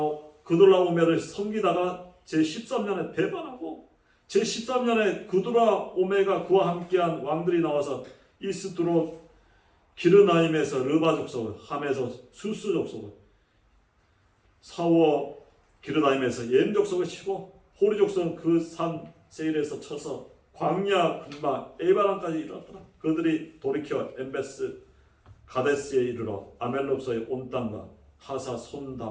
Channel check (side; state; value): both; identical; correlation 1.00